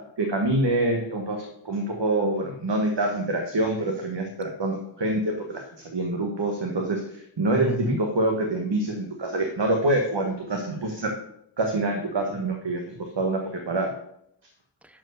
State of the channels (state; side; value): normal; both; correlation -0.11